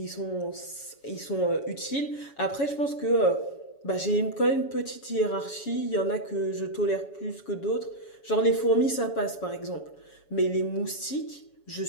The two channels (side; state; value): right; late; 7.1 ms